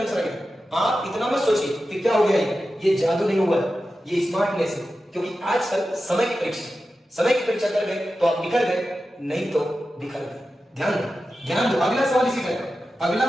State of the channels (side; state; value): both; normal; correlation 0.92